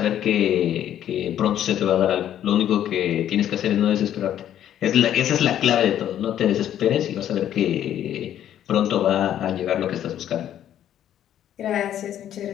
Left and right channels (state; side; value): quieter; right; 10.9 dB